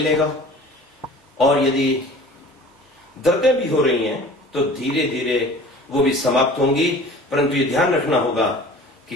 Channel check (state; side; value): normal; both; correlation 0.44